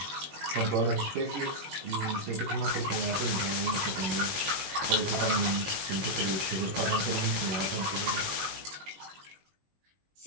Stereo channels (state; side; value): late; left; 21 ms